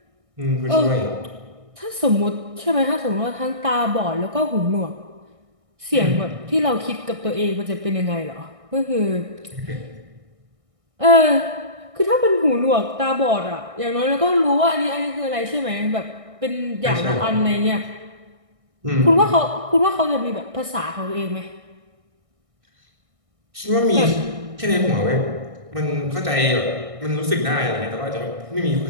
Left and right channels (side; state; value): left; late; 1.6 ms